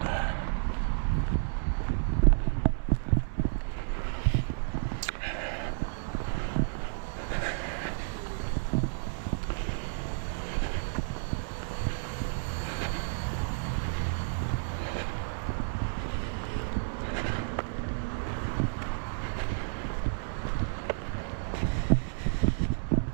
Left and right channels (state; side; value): silent; left; 57 dB below the other